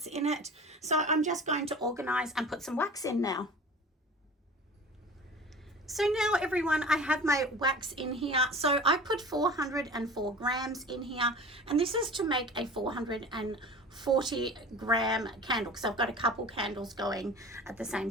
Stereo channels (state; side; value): normal; both; correlation 0.38